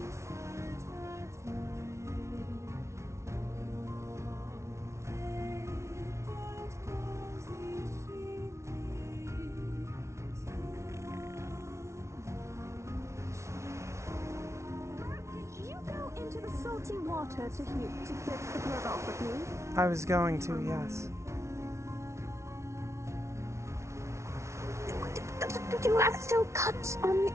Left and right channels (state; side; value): late; left; 0.13 ms